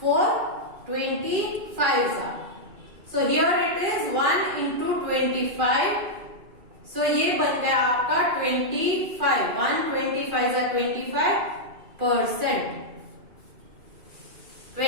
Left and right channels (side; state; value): left; late; 2.4 ms